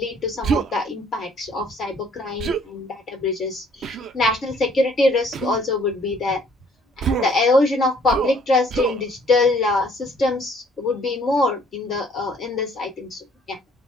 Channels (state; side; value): normal; both; correlation 0.60